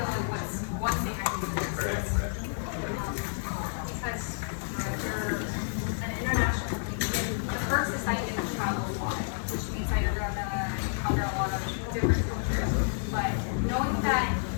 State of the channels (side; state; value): right; silent; digital silence